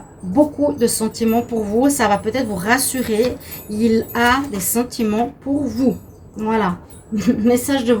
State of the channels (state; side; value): identical; both; correlation 1.00